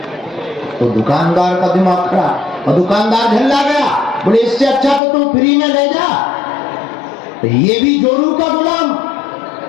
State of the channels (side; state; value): right; drops out; at 5.0 s